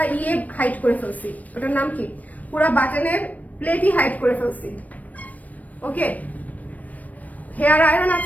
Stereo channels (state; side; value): late; right; 0.073 ms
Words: হাইট করে ফেলছি, ওটার নাম কি, পুরা বাটনের প্লেটই হাইট করে ফেলছি। ওকে, হেয়ার আয়রন